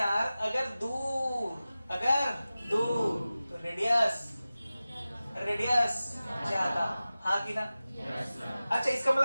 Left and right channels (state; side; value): inverted; both; correlation -0.96